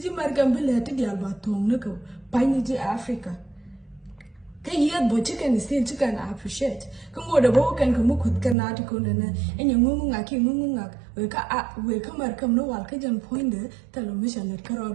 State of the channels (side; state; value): left; drops out; at 8.6 s